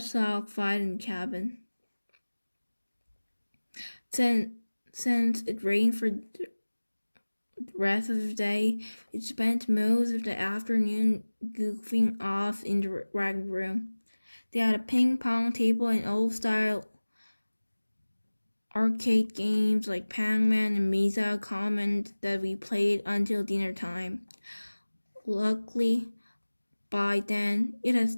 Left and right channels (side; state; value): both; inverted; correlation -1.00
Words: sock fight in the cabin. Since it rained for the rest of the day, we spent most of the afternoon goofing off in the rec room. They had a ping pong table and old-style arcade games like Pac-Man and Mesa Command that we played until dinner time. Luckily, by then, it had